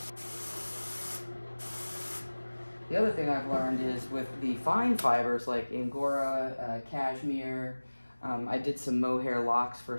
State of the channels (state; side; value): inverted; both; correlation -1.00